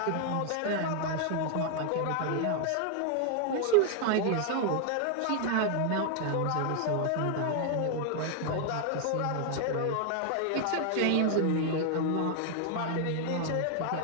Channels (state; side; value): different; both; correlation 0.00